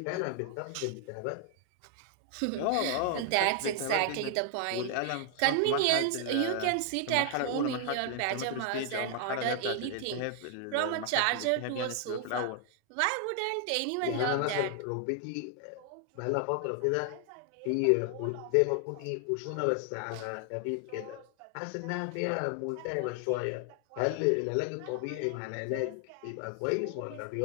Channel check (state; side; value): different; both; correlation 0.00